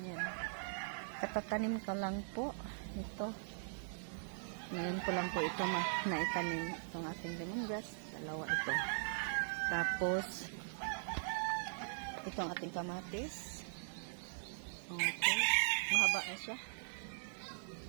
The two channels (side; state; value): left; silent; digital silence